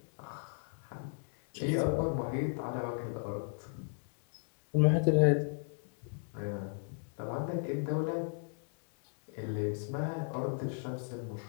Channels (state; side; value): silent; right; 54 dB below the other